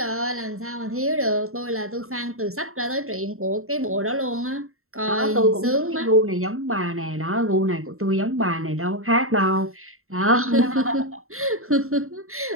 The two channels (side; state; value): left; late; 0.62 ms